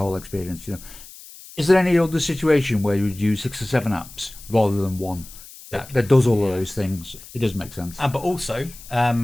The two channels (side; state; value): left; noise; hiss, 18 dB below the sound